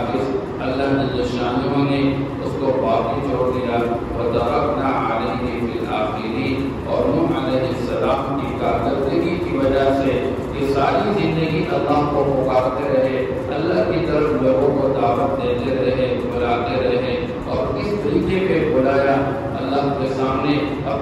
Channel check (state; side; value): identical; both; correlation 1.00